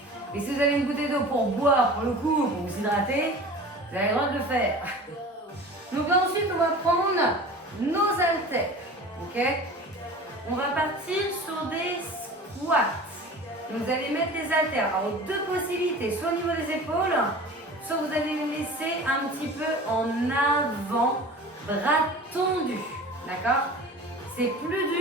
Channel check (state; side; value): normal; both; correlation 0.39